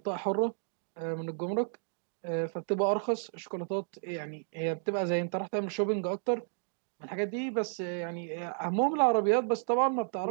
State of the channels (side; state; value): left; silent; digital silence